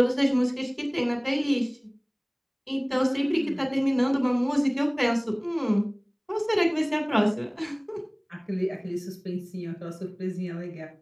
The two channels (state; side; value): identical; both; correlation 1.00